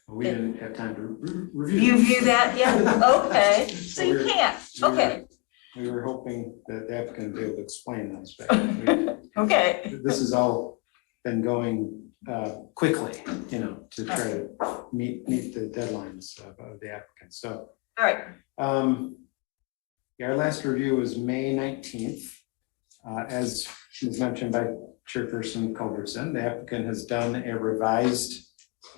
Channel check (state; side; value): quieter; right; 28.6 dB